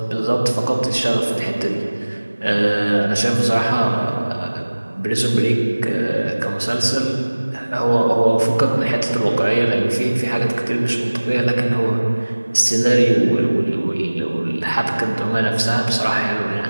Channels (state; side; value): inverted; both; correlation -1.00